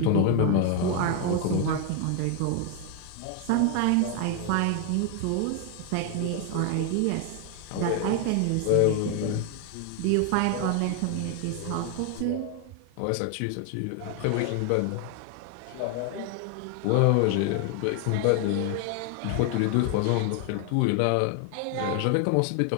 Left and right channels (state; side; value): different; both; correlation 0.01